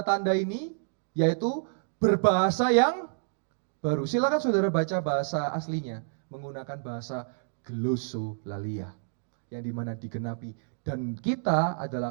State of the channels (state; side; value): silent; left; digital silence